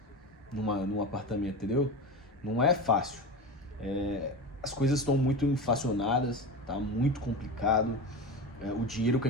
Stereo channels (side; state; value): both; normal; correlation 0.25